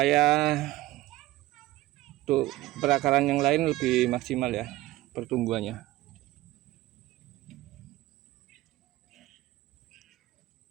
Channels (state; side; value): quieter; left; 17.2 dB